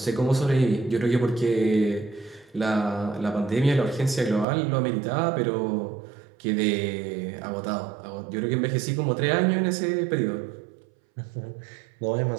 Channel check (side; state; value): left; drops out; at 4.5 s